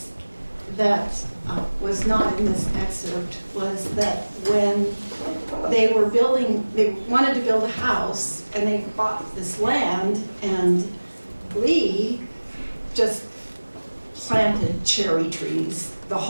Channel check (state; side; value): inverted; both; correlation -1.00